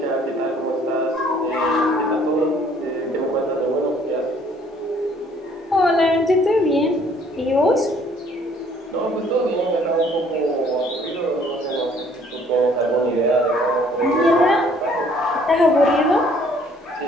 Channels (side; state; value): both; normal; correlation 0.60